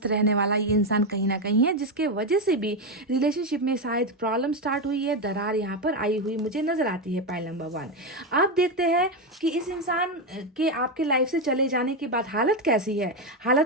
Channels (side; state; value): both; normal; correlation 0.09